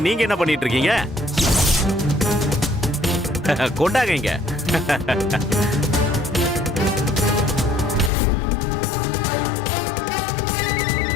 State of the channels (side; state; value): right; drops out; at 8.1 s